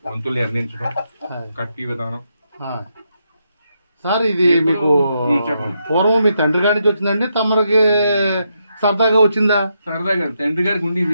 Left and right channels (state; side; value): inverted; both; correlation -0.81